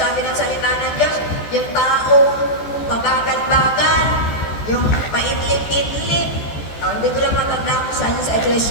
ng salita ng Diyos, yung tao, pabagal-bagal, yung paidlip-idlip. Hindi ko lang matanda kung saan sa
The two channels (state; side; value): late; right; 14 ms